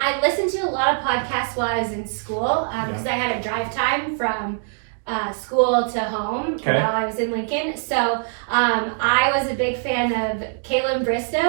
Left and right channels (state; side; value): silent; left; digital silence